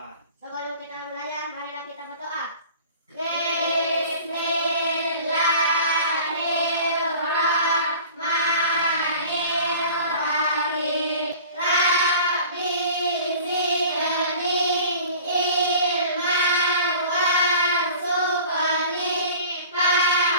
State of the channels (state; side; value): inverted; both; correlation -0.43